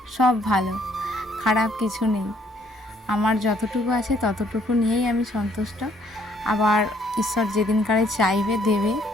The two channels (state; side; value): normal; both; correlation 0.65